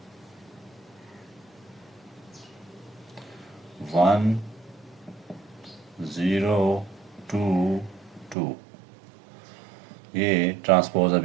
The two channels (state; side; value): drops out; left; at 8.3 s